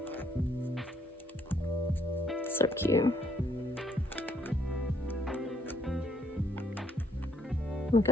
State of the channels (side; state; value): both; normal; correlation 0.69